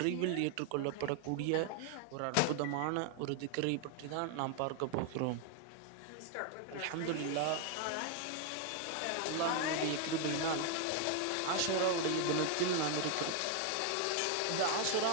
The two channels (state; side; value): different; both; correlation 0.00